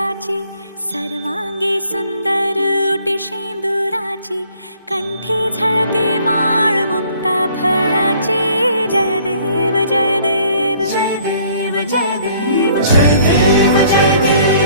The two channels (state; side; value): inverted; both; correlation -0.59